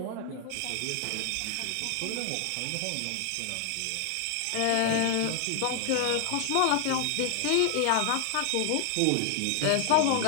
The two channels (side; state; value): both; different; correlation 0.00